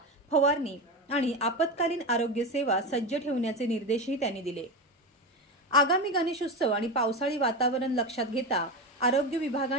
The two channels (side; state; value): both; normal; correlation 0.19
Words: फवारणी आणि आपत्कालीन आरोग्य सेवा सज्ज ठेवण्याचे निर्देशही त्यांनी दिले। आगामी गणेशोत्सव आणि पावसाळी वातावरण लक्षात घेता आरोग्य